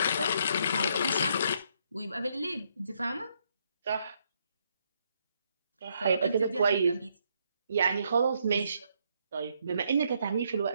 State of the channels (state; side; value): inverted; both; correlation -0.74